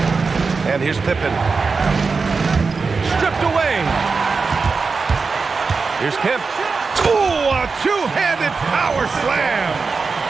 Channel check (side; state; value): left; quieter; 4.6 dB